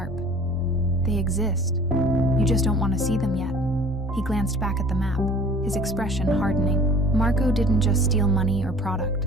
They exist. You just don't want to see them yet. He glanced back at the map, his expression hardening. Marco didn't just steal money or product.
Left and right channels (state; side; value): normal; both; correlation 0.48